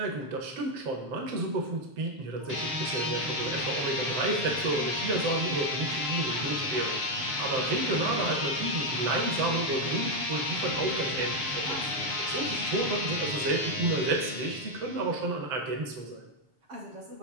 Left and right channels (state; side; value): late; left; 7.6 ms